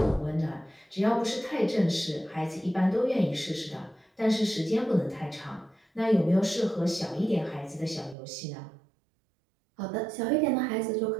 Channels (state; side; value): drops out; left; at 8.2 s